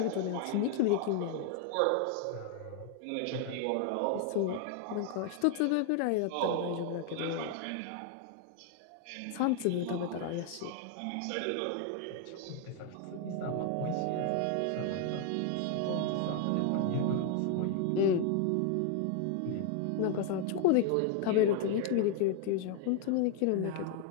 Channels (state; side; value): different; both; correlation 0.00